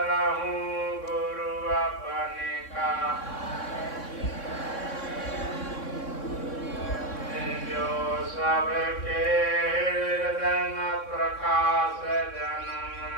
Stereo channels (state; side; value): late; right; 3.6 ms